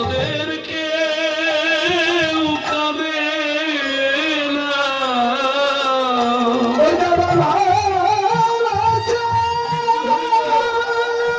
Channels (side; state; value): both; identical; correlation 1.00